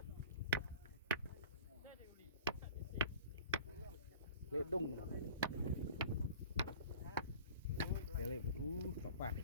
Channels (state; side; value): inverted; both; correlation -0.43